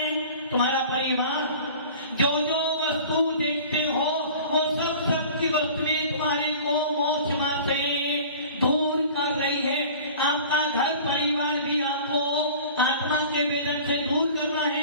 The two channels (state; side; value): inverted; both; correlation -0.43